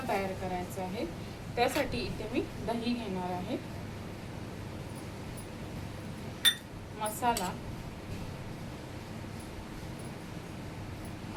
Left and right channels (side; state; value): both; identical; correlation 1.00